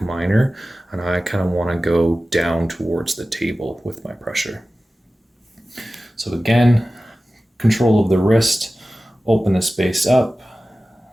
minor, and I kind of want to go down towards the table with my pressure. So again, control of the wrist, open the space up.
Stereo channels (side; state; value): both; normal; correlation 0.96